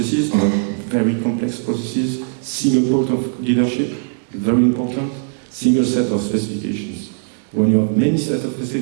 not very complex processes, single point of leadership, very important, single set of specifications. When you have many sets of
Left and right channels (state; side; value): silent; left; digital silence